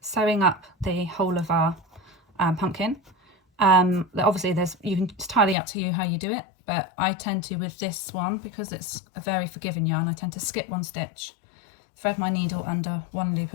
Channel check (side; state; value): right; drops out; at 5.6 s